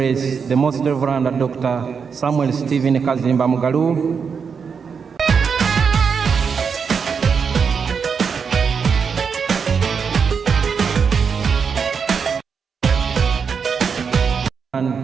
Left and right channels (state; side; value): quieter; left; 6.1 dB